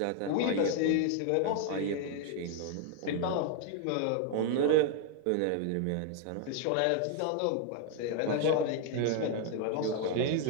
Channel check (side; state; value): both; different; correlation 0.01